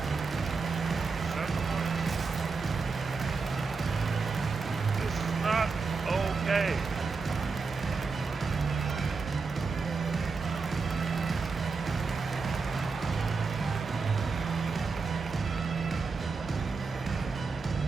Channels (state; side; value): quieter; left; 4.6 dB